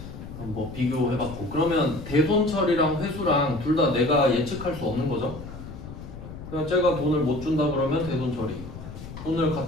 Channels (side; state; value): left; noise; rumble, 12 dB below the sound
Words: 뭐 비교해봤고, 그러면 대손 처리랑 회수랑 둘 다 내가 예측할 수 없는 거죠. 그냥 제가 돈을 못 준다 그러면 대손 처리, 돈을